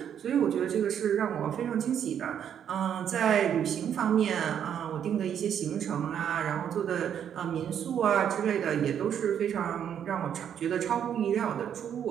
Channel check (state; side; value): quieter; left; 8.9 dB